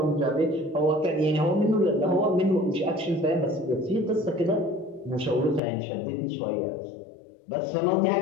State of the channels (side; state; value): right; drops out; at 5.6 s